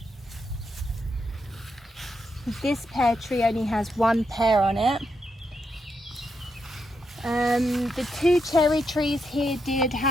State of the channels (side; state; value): both; normal; correlation 0.82